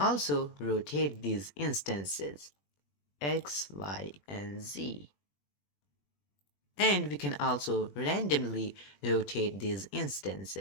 rotate these instances, X, Y, and Z. And we can also randomly rotate these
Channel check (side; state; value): right; late; 21 ms